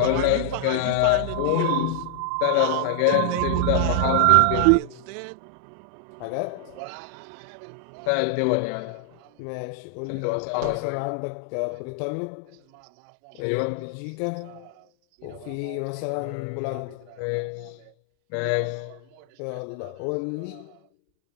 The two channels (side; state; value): both; different; correlation 0.00